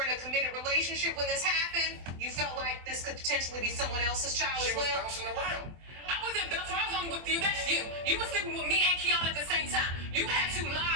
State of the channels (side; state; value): left; late; 24 ms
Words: in a committed relationship when this happened. You felt like this could potentially be someone else's child She as was well. bouncing around. I wasn't bouncing. I was only with you. That's you. You were sleeping with me and Kiana at the same time. You had to